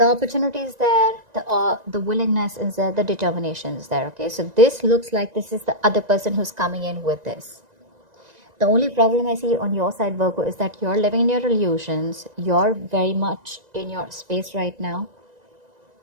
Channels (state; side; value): late; left; 1.9 ms